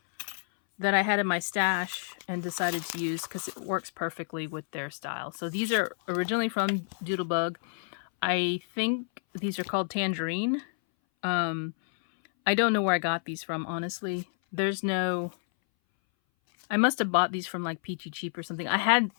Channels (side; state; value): right; silent; 58 dB below the other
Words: that I had in my stash and decided to use because it works perfectly with their style. So these are originally from Doodlebug. I think these are called Tangerine. I don't know where I got these from, honestly. There's no... I must have bought these from like Peachy Cheap or something. I had